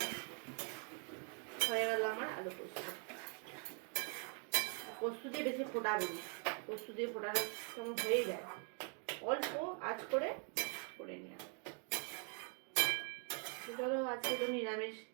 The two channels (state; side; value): quieter; left; 39.0 dB